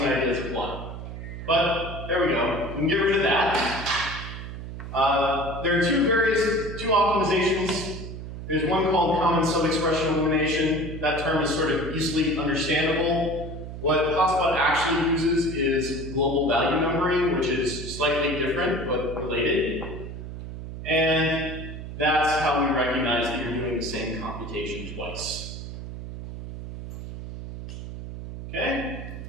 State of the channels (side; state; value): right; noise; hum, 9 dB below the sound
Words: ideas apply. But, there we go. We can get rid of that. There are two optimizations. There's one called common subexpression elimination. That term is sort of easily understandable. What Hotspot actually uses is global value numbering, which is slightly different but related. And that's how we recognize that you're doing the same computation twice. Okay?